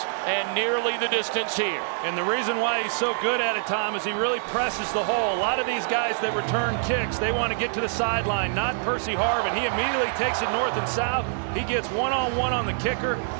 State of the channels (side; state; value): left; silent; digital silence